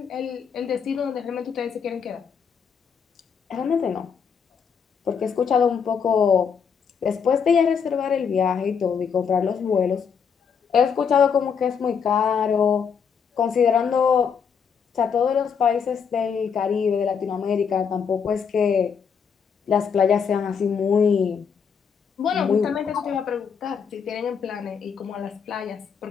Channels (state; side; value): quieter; right; 6.7 dB